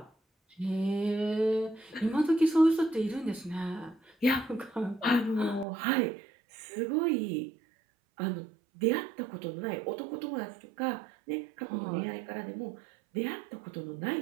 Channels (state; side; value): drops out; left; at 5.7 s